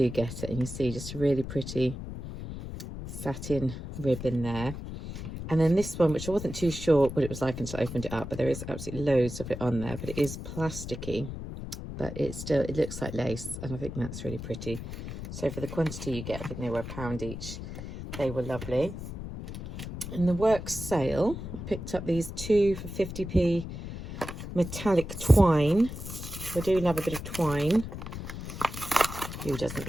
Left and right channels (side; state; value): left; noise; rumble, 8 dB below the sound